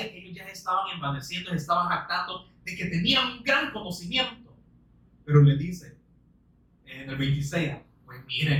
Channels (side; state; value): both; identical; correlation 1.00